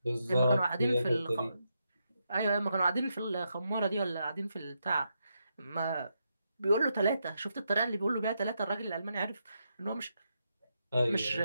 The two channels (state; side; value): inverted; both; correlation -0.82